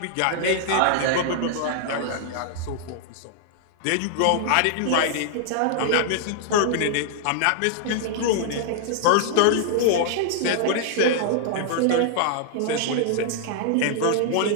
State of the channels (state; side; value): different; both; correlation -0.01